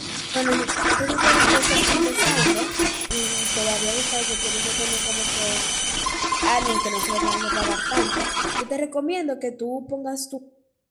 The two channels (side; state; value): both; identical; correlation 1.00